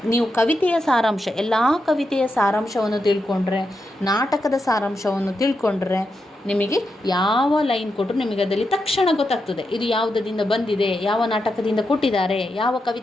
ನೀವು ಕವಿತೆಯ ಸಾರಾಂಶ, ಎಲ್ಲ ಕವಿತೆಯ ಸಾರಾಂಶವನ್ನು ತಿಳ್ಕೊಂಡ್ರೆ, ನಾಟಕದ ಸಾರಾಂಶವನ್ನು ತಿಳ್ಕೊಂಡ್ರೆ ನಿಮಗೆ ಯಾವ ಲೈನ್ ಕೊಟ್ಟರು ನಿಮಗೆ ಅದರಲ್ಲಿ ತಕ್ಷಣ ಗೊತ್ತಾಗ್ತದೆ. ಇದು ಯಾವುದರಿಂದ ಬಂದಿದೆ, ಯಾವ ನಾಟಕದಿಂದ ಕೊಟ್ಟಿದ್ದಾರೆ, ಯಾವ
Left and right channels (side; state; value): both; normal; correlation 0.86